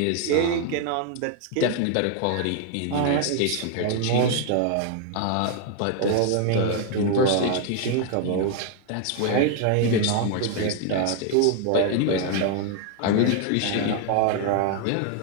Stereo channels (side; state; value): both; different; correlation 0.01